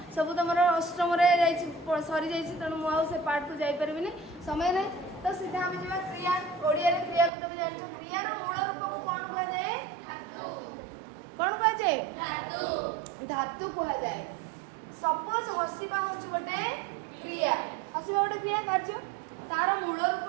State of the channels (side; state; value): left; drops out; at 7.3 s